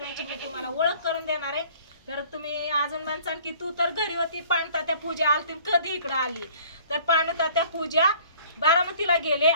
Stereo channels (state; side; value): inverted; both; correlation -0.53